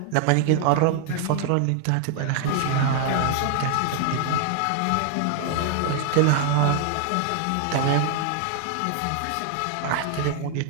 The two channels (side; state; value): both; different; correlation 0.00